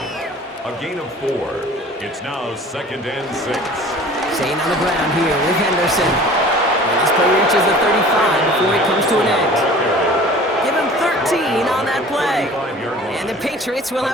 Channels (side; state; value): both; normal; correlation 0.45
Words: A gain of 4. It's now 2nd and 6. Staying on the ground here with Henderson. And this play reaches the 35 before it comes to an end. Give him 13 on that play. And the Patriots will